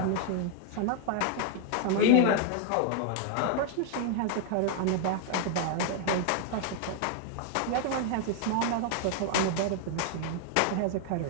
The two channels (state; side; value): different; both; correlation 0.00